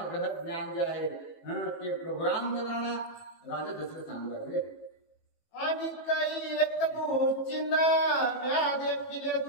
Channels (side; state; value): right; late; 18 ms